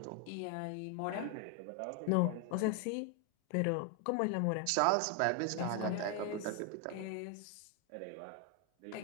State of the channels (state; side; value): different; both; correlation 0.01